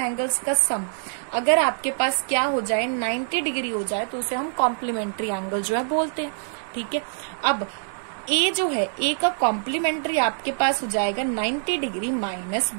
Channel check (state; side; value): silent; left; digital silence